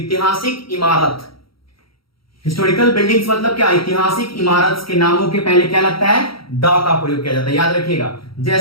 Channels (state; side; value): late; right; 0.75 ms